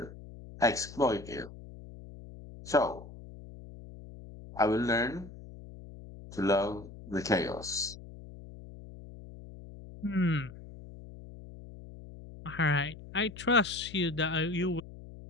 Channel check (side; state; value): left; noise; hum, 16 dB below the sound